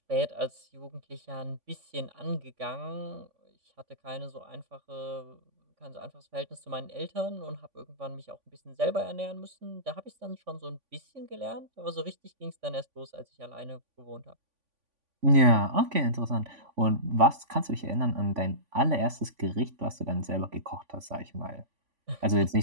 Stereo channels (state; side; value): late; left; 3.5 ms